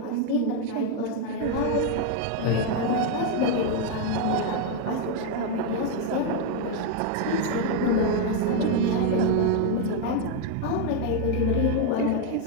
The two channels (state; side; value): different; both; correlation 0.01